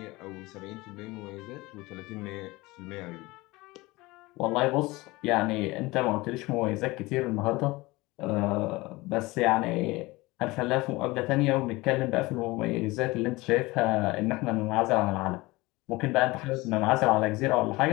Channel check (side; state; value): right; quieter; 21.6 dB